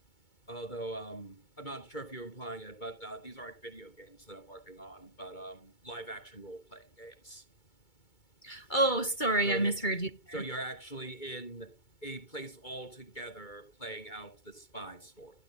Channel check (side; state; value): right; late; 2.2 ms